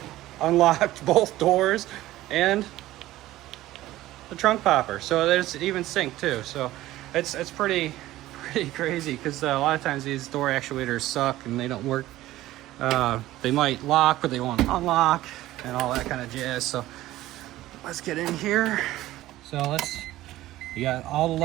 unlocked both doors, and the trunk popper. So there's even sync too. So it's pretty crazy, because a lot of times these door actuators suck and they don't work. They might lock, but they won't unlock, and all that kind of jazz. So let's get in here. So you got all the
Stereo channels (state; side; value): quieter; left; 15.8 dB